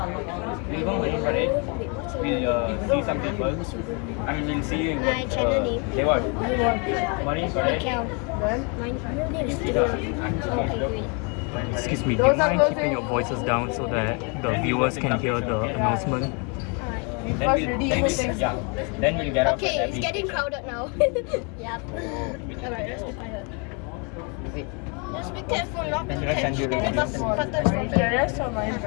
We'll go Marine Parade. We'll see some people. I mean, we'll see My channel name. Say what? Marine Parade. Kel. My name is See Kel. the Okay, great. Excuse me, do you mind keeping your voices down so that the viewers can hear the announcement? Alright. First ready everything. Then we'll get off Okay, at it's getting crowded now. Yep. Alright, let's be quiet. Just be careful not to catch any buttons from here. Terrace or Marine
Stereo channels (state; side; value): quieter; right; 34.5 dB